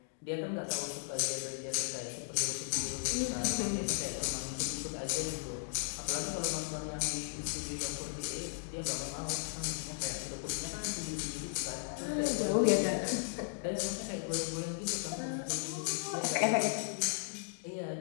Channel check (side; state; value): right; silent; digital silence